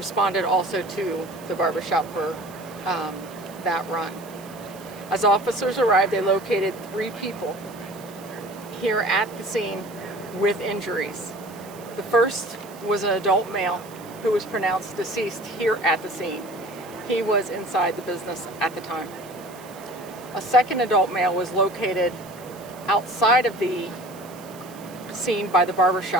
also to the barber shop for that run. As officers arrived, they located three people here at the scene with injuries. The first was an adult male who was pronounced deceased here at the scene. He was inside the business at the time. A second adult male was located outside of the scene by the barber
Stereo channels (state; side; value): noise; right; hiss, 21 dB below the sound